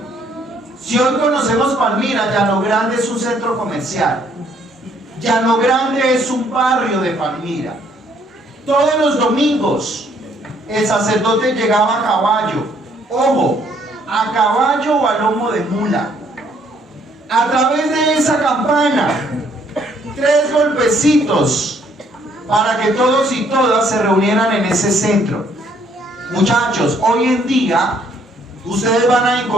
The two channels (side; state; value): both; normal; correlation 0.66